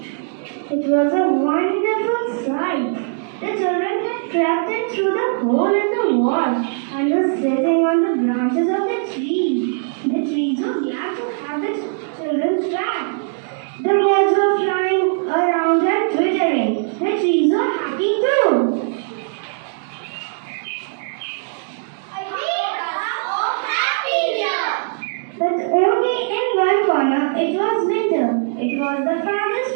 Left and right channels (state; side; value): silent; left; digital silence